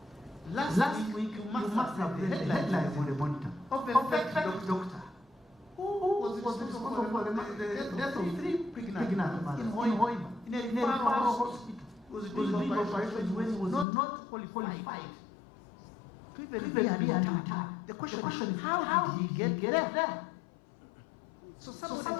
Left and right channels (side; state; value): right; drops out; at 13.9 s